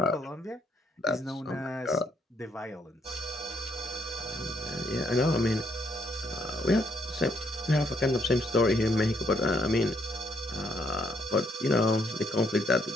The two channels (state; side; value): normal; both; correlation 0.71